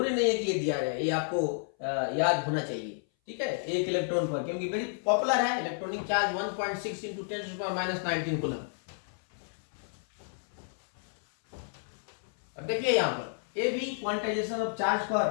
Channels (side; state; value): right; silent; 57 dB below the other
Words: नहीं है कि ये दिया रहे, ये आपको याद होना चाहिए। ठीक है, एक इलेक्ट्रॉन पर, क्योंकि वेरी पॉपुलर है इलेक्ट्रॉनिक चार्ज 1.6 इंटू 10⁻⁻19 कूलम। अब देखिए यहां पर ये भी क्वांटाइजेशन ऑफ चार्ज